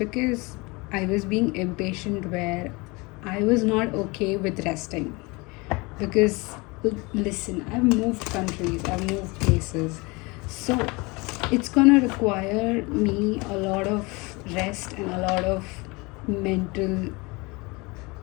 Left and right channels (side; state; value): right; quieter; 25.9 dB